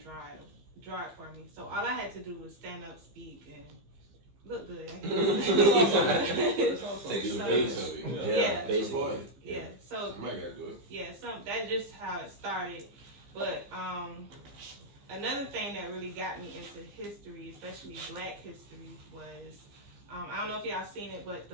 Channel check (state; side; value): late; left; 15 ms